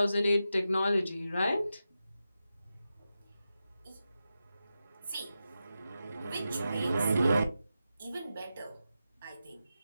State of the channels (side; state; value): both; inverted; correlation -0.90